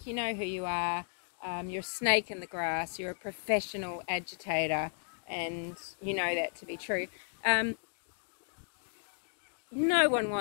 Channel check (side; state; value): right; silent; digital silence